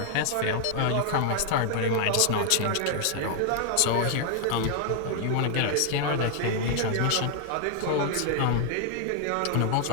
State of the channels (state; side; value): different; both; correlation 0.00